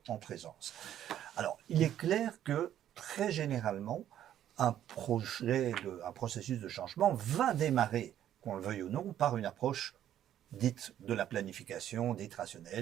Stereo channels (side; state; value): left; quieter; 11.2 dB